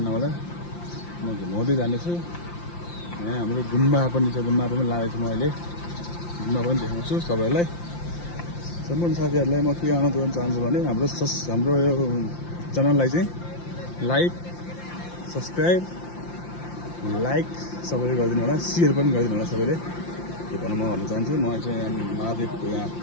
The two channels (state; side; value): late; right; 5.8 ms